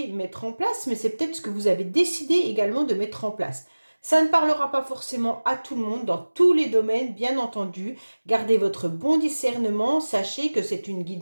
mettre en place, mais c'est peut-être ce que vous avez décidé également de mettre en place. Ça ne parlera pas forcément à tout le monde, dans tous les domaines, bien entendu. Gardez votre bon discernement, sachez que c'est une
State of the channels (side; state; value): both; inverted; correlation -1.00